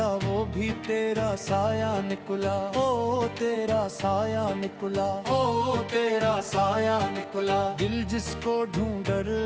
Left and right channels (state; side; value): identical; both; correlation 1.00